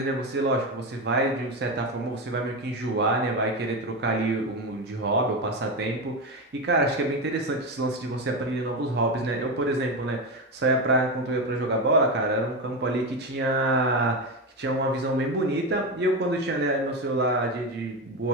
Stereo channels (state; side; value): normal; both; correlation 0.16